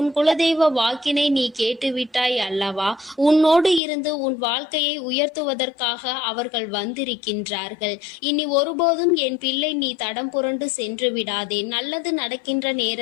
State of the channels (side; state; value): right; drops out; at 3.8 s